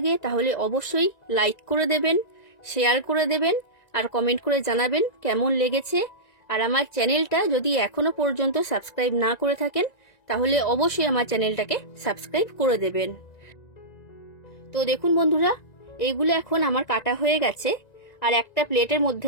তাহলে অবশ্যই লাইক করে দেবেন, শেয়ার করে দেবেন আর কমেন্ট করে জানাবেন কেমন লেগেছে। আর আমার চ্যানেলটা যদি এখনো পর্যন্ত সাবস্ক্রাইব না করে থাকেন তাহলে অবশ্যই আমার চ্যানেলটাকে সাবস্ক্রাইব করে দেবেন। তো দেখুন বন্ধুরা, এইগুলো এখন আমার কাটা হয়ে গেছে আর একটা প্লেটের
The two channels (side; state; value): right; late; 1.9 ms